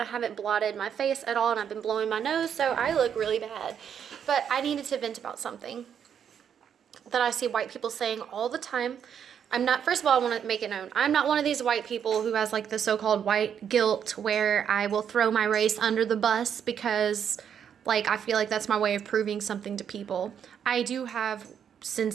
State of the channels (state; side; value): quieter; left; 8.3 dB